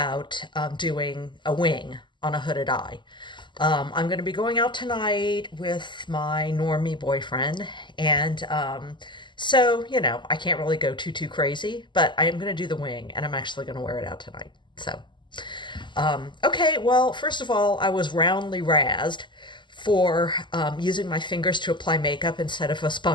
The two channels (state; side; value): late; right; 0.22 ms